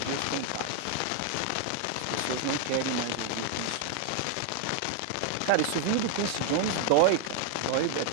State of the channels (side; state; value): both; different; correlation 0.00